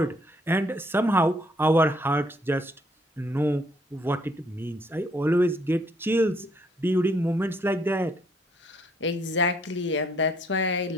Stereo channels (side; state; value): both; normal; correlation 0.67